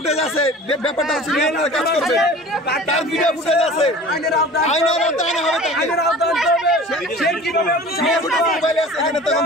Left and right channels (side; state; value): both; normal; correlation 0.42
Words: আছে ব্যাপারটা হচ্ছে কাজ করবে তার ভিডিও ফুটেজ আছে আইনের আওতায় হবে মোবাইল আছে এখানে তখন